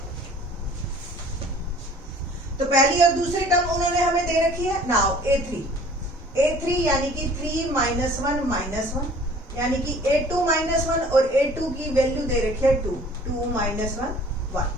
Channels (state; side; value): normal; both; correlation 0.50